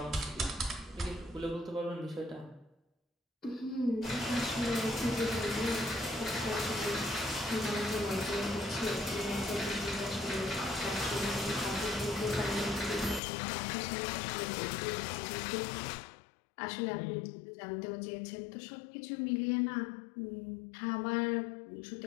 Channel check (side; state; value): right; drops out; at 13.2 s